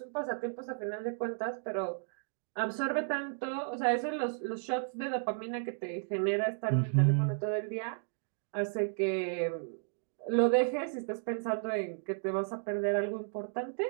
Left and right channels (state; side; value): silent; left; digital silence